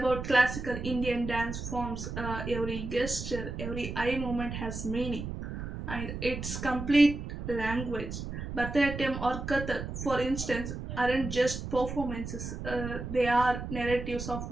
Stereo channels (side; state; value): right; noise; rumble, 6 dB below the sound